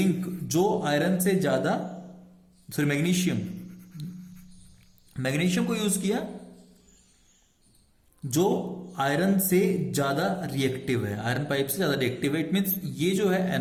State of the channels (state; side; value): identical; both; correlation 1.00